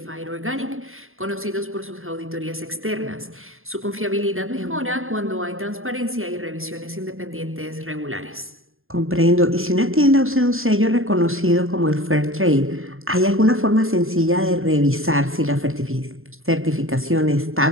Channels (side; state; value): left; late; 0.61 ms